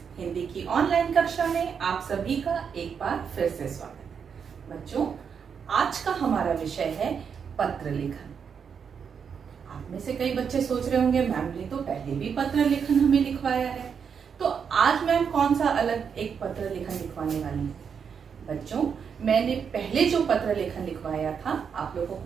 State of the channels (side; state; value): left; quieter; 6.8 dB